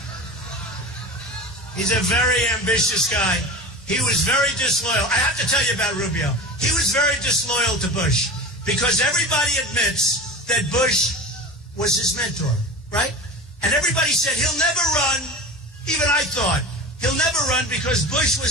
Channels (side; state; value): both; normal; correlation 0.32